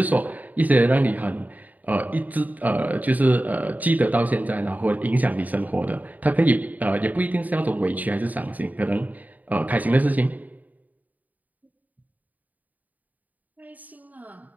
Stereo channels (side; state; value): left; late; 0.078 ms